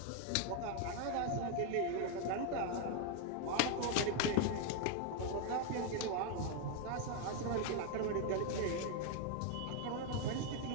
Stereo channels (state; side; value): different; both; correlation 0.01